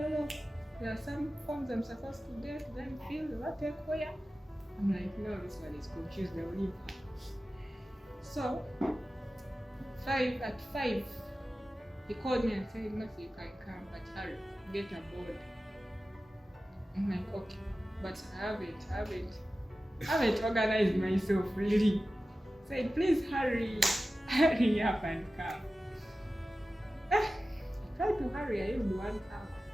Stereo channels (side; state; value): both; normal; correlation 0.95